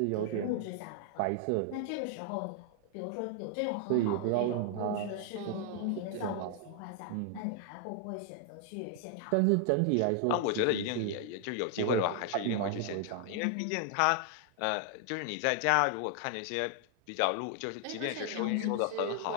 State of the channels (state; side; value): different; both; correlation 0.00